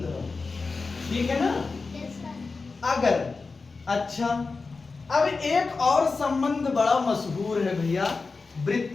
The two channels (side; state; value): right; quieter; 4.2 dB